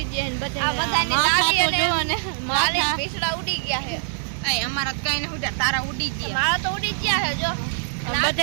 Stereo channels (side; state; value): left; silent; digital silence